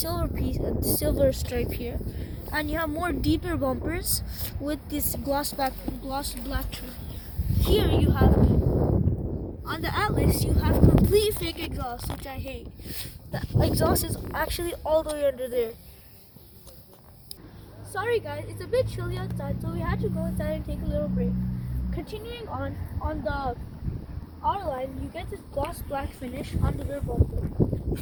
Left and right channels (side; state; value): both; identical; correlation 1.00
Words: stripe here. And you have more deeper bumpers with this gloss black trim. Here you have, on the Atlas, you have complete fake exhaust, which I hate. The exhaust is actually all the way under there. Sorry guys, it's a bit chilly outside, so we had to go inside and take a little break. Continuing on the R-Line, you get this gloss black finish on the rear bumper.